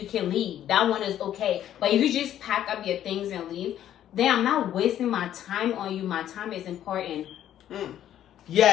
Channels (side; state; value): right; quieter; 11.3 dB